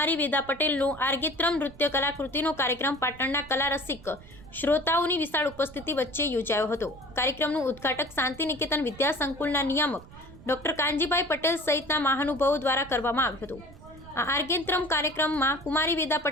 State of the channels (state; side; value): noise; right; rumble, 19 dB below the sound